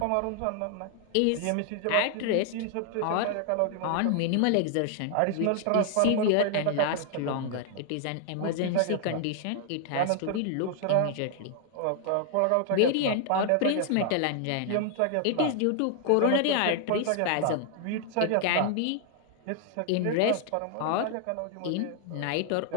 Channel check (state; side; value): different; both; correlation 0.00